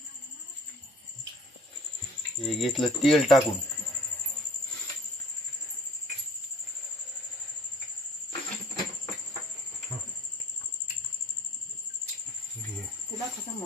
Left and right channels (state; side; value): normal; both; correlation 0.54